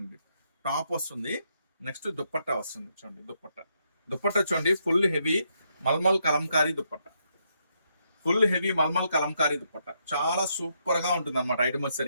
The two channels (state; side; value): inverted; both; correlation -0.78